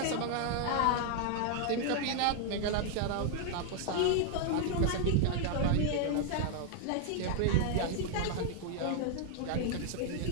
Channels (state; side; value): different; both; correlation 0.00